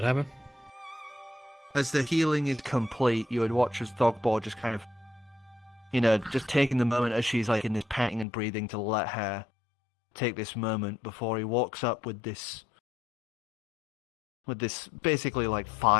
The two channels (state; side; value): drops out; right; at 8.2 s